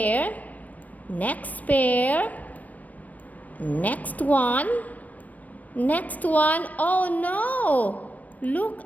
Next pair. Next one. Next one. Oh no! Look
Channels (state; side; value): late; right; 0.074 ms